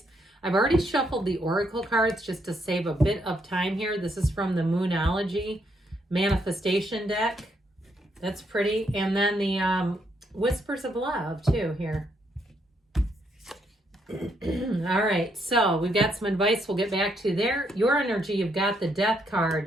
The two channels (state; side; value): normal; both; correlation 0.75